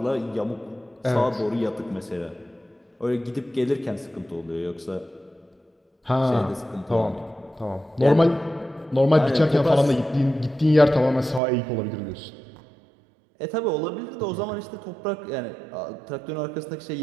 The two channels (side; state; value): left; drops out; at 11.4 s